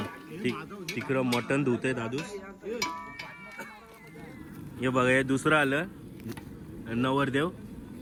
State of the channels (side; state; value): both; identical; correlation 1.00